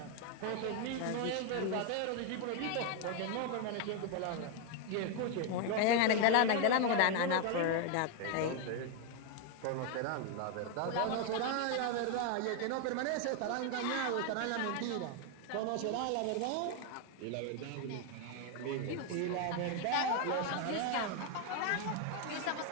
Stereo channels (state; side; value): different; both; correlation 0.01